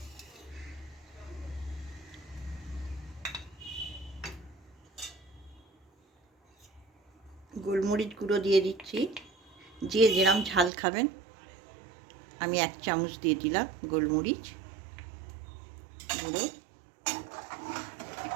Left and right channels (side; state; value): left; drops out; at 10.7 s